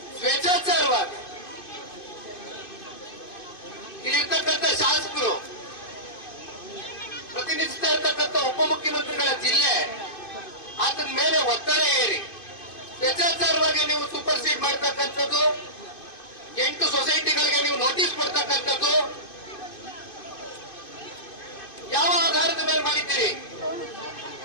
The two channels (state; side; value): late; right; 2.5 ms